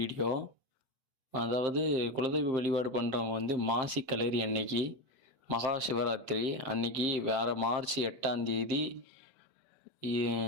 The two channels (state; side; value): late; left; 7.6 ms